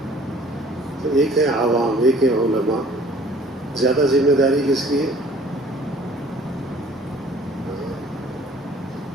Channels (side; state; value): both; normal; correlation 0.53